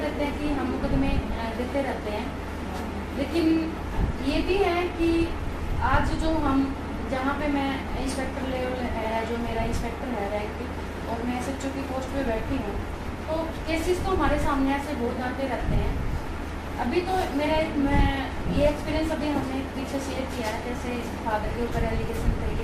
हैं कि हम मुकदमे देते रहते हैं, लेकिन ये भी है कि आज जो हम जहाँ पे मैं इंस्पेक्टर लेवल है, जो मेरा इंस्पेक्टर है रैंक, और मैं SHO की पोस्ट पे बैठी हूँ, तो केसेस तो हमारे सामने ऐसे बहुत आते रहते हैं। अभी तो मेरा मैं ये एक्सपीरियंस अभी हमने पीछे शेयर किया है, जैसे फादर के ऊपर एलिगेशन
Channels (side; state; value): both; identical; correlation 1.00